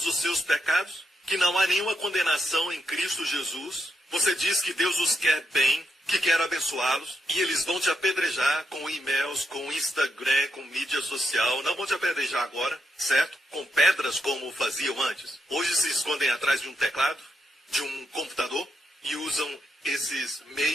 os seus pecados, que não há nenhuma condenação em Cristo Jesus. Você diz que Deus os quer bem, que quer abençoá-los, e eles vão te apedrejar com e-mails, com Instagram, com mídia social. Não vão te apedrejar agora, certo? Com pedras como faziam antes. Hoje se escondem atrás de um teclado, de um computador, e usam esses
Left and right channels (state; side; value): normal; both; correlation 0.83